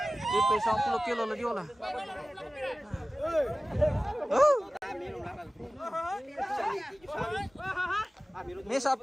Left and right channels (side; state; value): both; normal; correlation 0.96